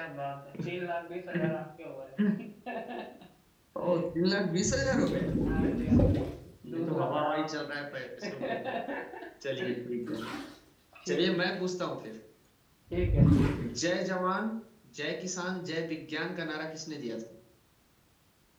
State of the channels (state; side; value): identical; both; correlation 1.00